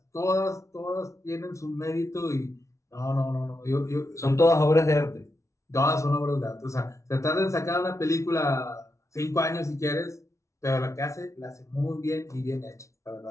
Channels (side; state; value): right; late; 0.14 ms